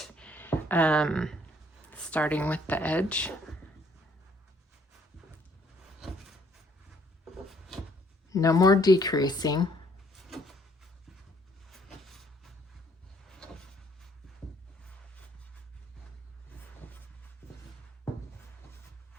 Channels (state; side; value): normal; both; correlation 0.64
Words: starting with the edge. No more decreasing.